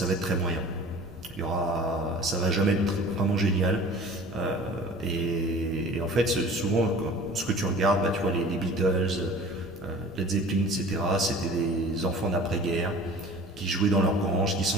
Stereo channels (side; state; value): both; normal; correlation 0.43